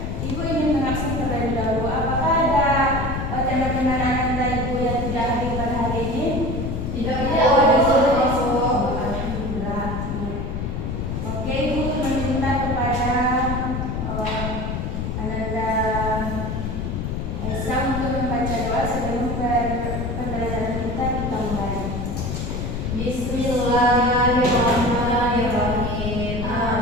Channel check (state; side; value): noise; left; rumble, 3 dB below the sound